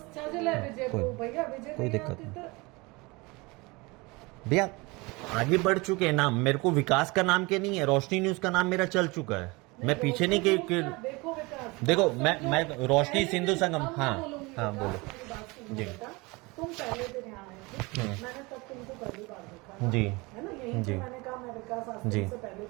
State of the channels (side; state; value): left; quieter; 25.0 dB